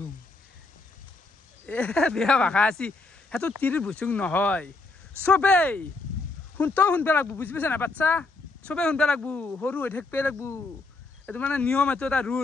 বেয়া ভাষা আছে সেইটো তিৰিৰ ভুচুং নহয় চবেই তই শুনবা লাগবো বুজি পাইছা না বাচ্চা চবেই শুনবা লাগবো সৰু হৈ থাকিবই লাগবো এইটো মানে নিয়ম এইটো এটা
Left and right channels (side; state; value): right; quieter; 3.4 dB